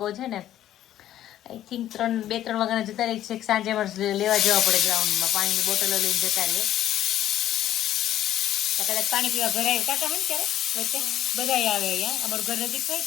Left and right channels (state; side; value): quieter; right; 12.3 dB